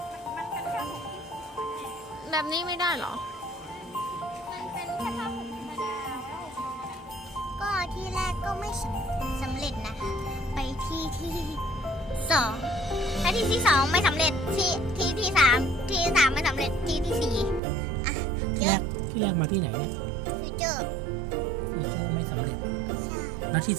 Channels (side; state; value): left; drops out; at 17.6 s